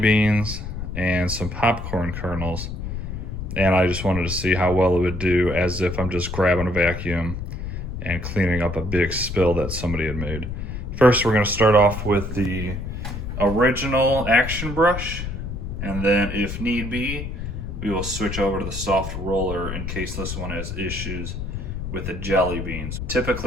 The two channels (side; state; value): left; noise; rumble, 6 dB below the sound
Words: and some popcorn kernels. And I just wanted to see how well it would do as if I'm just grabbing a vacuum and cleaning up a big spill that somebody had made. First, we're going to start off with the original action brush, and then if need be we will switch over to the soft roller in case this one has issues with the jelly beans.